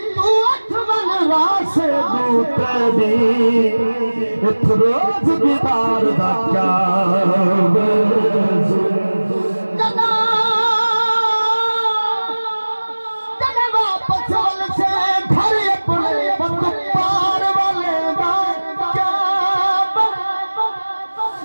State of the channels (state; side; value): inverted; both; correlation -1.00